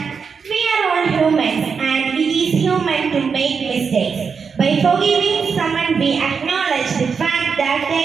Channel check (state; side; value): quieter; left; 5.8 dB